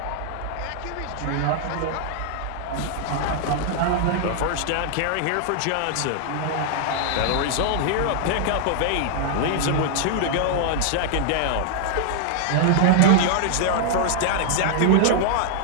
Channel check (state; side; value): different; both; correlation -0.01